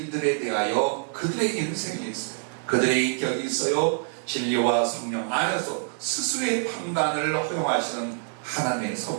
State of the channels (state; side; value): silent; left; 61 dB below the other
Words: 대하여 그들의 인생이 있어요. 그들의 인격이 있어요. 진리와 성령 안에서 스스로의 판단을 허용하시는 하나님의